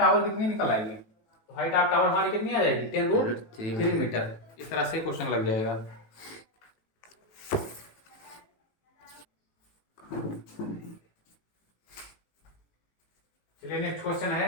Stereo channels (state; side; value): late; right; 18 ms